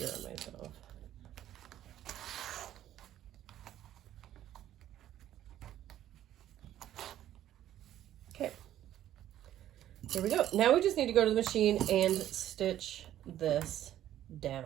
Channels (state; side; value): quieter; left; 12.2 dB